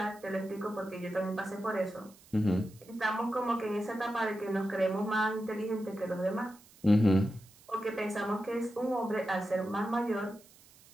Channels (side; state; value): right; noise; hiss, 25 dB below the sound